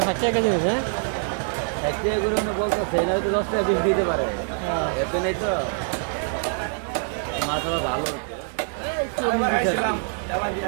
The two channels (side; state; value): left; silent; 56 dB below the other